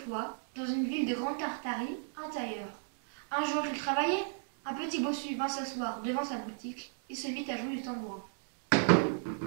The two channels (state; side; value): silent; left; digital silence